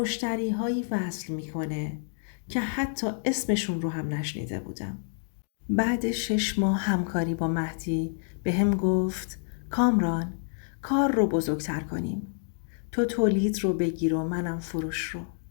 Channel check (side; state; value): right; silent; digital silence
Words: وصل میکنه که حتی اسمشون رو هم نشنیده بودم. بعد 6 ماه همکاری با مهدی به هم گفت کامران، کار رو بزرگتر کنیم. تو تولید رو بگیر و منم فروش رو.